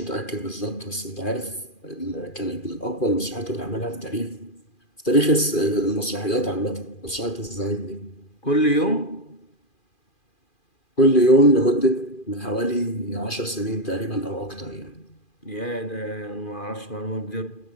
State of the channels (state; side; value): late; right; 2.4 ms